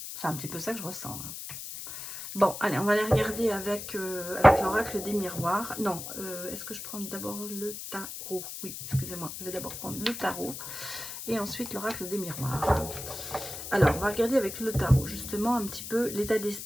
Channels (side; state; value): left; noise; hiss, 9 dB below the sound